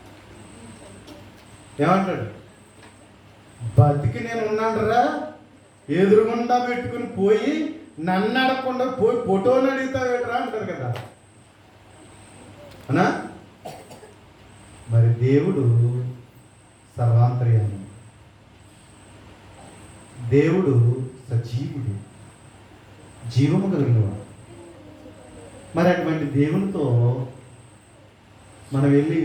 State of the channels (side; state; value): both; identical; correlation 1.00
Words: ఏమంటాడు? బతికి నేను ఉన్నాడరా, ఎదురుగుండా పెట్టుకుని పోయి నన్ను అడగకుండా పోయి ఫోటోని అడుగుతావేట్రా అంటారు కదా. అనా? మరి దేవుడు సర్వాంతర్యామి, దేవుడు సజీవుడు, జీవము కలిగినవాడు. మరి అటువంటి దేవునితో మనం వెళ్ళి